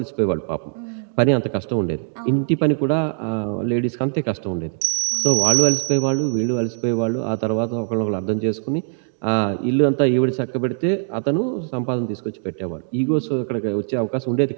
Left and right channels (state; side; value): silent; left; digital silence